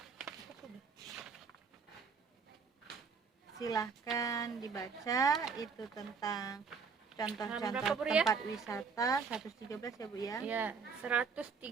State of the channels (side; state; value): left; quieter; 5.4 dB